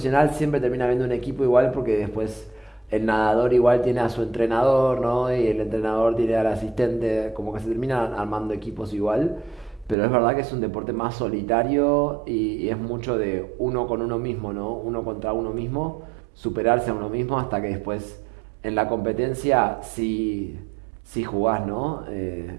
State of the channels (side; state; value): left; drops out; at 10.0 s